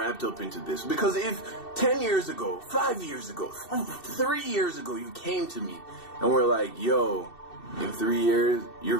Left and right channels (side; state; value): right; late; 2.7 ms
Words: up into this. Because if 10 years ago, 5 years ago, 3 years ago, you came to me and were like, yo, in 3 years,